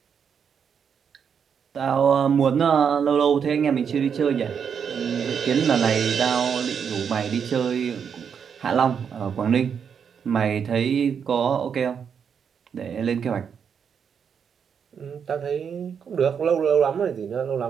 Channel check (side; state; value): left; quieter; 7.1 dB